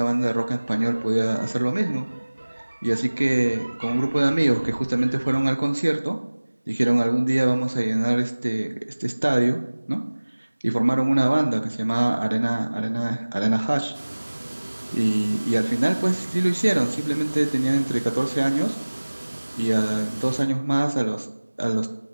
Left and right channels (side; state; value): both; inverted; correlation -1.00